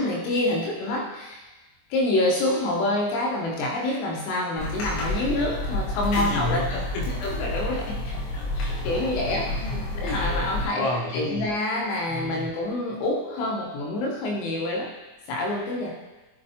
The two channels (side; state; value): right; late; 24 ms